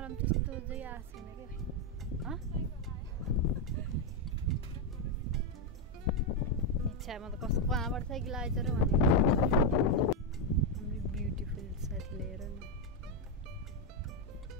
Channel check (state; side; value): normal; both; correlation 0.04